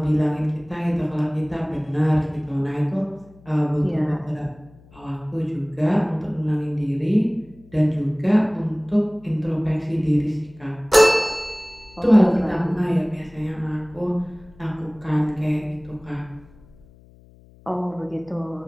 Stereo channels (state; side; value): noise; left; hum, 25 dB below the sound